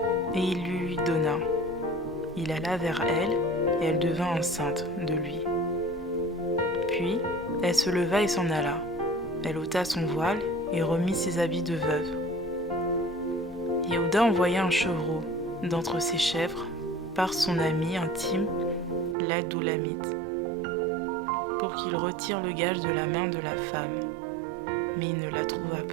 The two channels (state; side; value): drops out; left; at 19.2 s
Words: » Et il lui donna. Il alla vers elle, et elle devint enceinte de lui. Puis, elle se leva et s'en alla. Elle ôta son voile et remit ses habits de veuve. Yehuda envoya un chevreau d'entre ses chèvres par son ami intime, l'Adoulamite, pour qu'il retire le gage de la main de la femme. Mais il ne la trouva